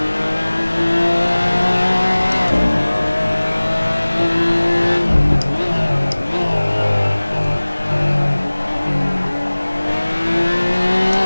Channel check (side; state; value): both; inverted; correlation -1.00